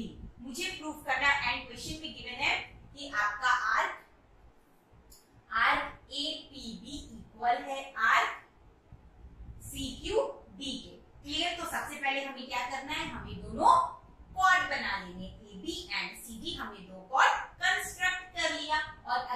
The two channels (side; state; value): both; identical; correlation 1.00